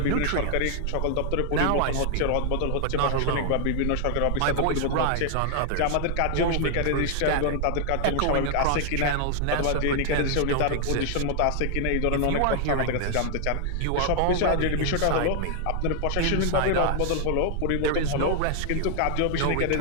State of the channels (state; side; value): different; both; correlation 0.00